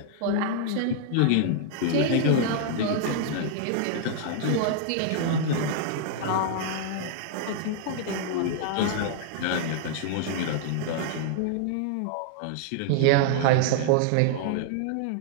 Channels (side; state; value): both; different; correlation -0.01